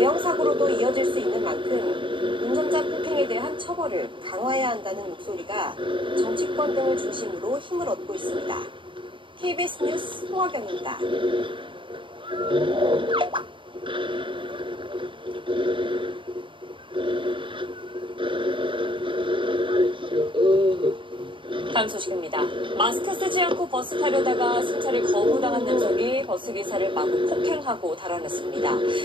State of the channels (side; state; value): left; late; 0.24 ms